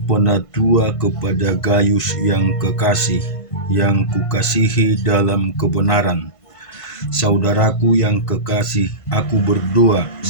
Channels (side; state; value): right; late; 1.5 ms